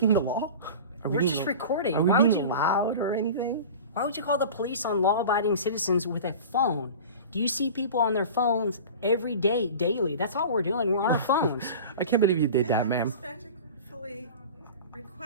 the law? We're just recording. Are we Why would being you- loud or anything? Why would you call the police on law-abiding citizens with a phone? Do you see people on their phones every day, daily? That's all we're doing. We're on our phones. I can't believe you did that, I ma'am. respectfully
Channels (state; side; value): inverted; both; correlation -0.35